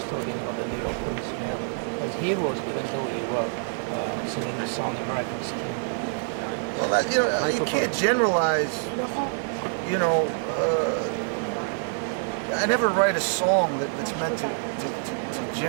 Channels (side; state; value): left; silent; 61 dB below the other